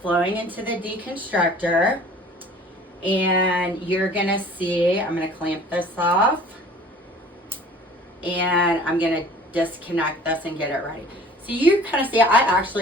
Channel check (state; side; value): normal; both; correlation 0.48